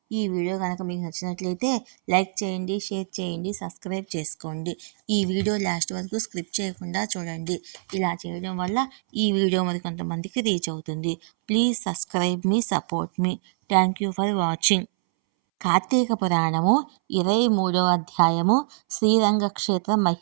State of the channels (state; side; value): silent; left; 62 dB below the other